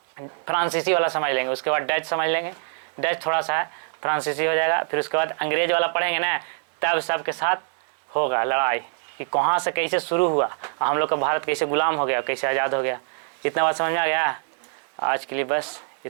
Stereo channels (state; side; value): silent; left; 62 dB below the other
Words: फ्रांसीसी वाला समझ लेंगे, उसके बाद डच समझ लेंगे, डच थोड़ा सा है, फ्रांसीसी हो जाएगा। फिर उसके बाद अंग्रेज वाला पढ़ेंगे ना, तब सबके साथ होगा लड़ाई कि कहाँ से कैसे शुरू हुआ, हम लोग का भारत कैसे गुलाम हो गया, कैसे आज़ाद हो गया। इतना बात समझ में आ गया। आज के लिए बस